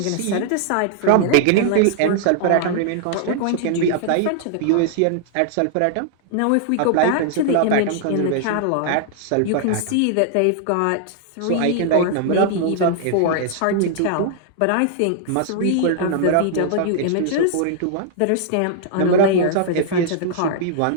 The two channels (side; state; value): both; different; correlation -0.01